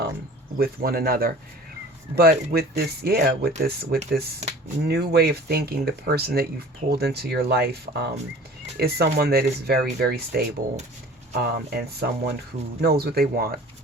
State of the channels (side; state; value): both; normal; correlation 0.44